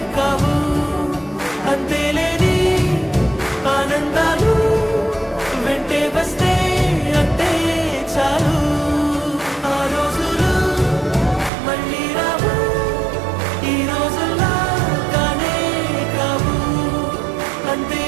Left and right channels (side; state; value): left; drops out; at 11.5 s